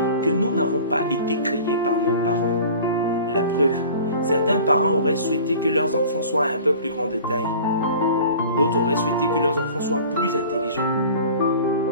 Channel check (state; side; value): inverted; both; correlation -0.43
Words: que nous n'avons pas été créés par nos parents. La preuve, certains parents auraient souhaité que leurs enfants soient un peu plus grands de taille. D'autres auraient souhaité que leurs enfants soient plus intelligents.